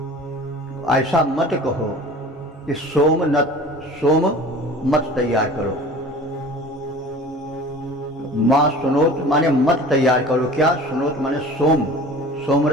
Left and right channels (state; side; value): normal; both; correlation 0.42